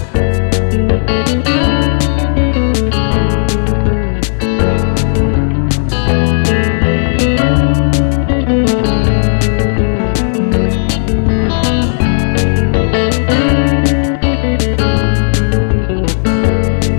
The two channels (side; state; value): right; silent; digital silence